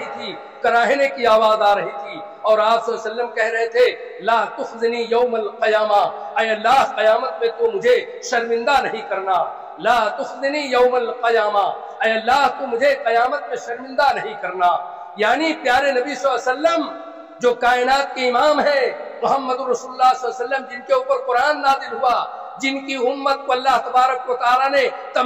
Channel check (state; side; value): identical; both; correlation 1.00